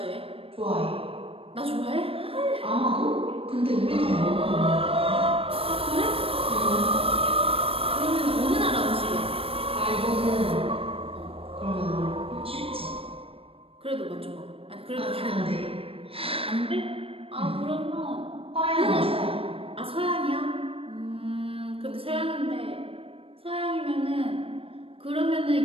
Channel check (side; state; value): left; late; 0.27 ms